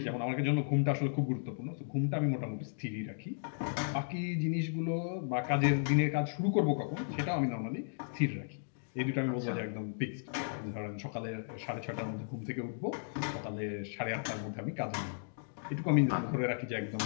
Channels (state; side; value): silent; right; digital silence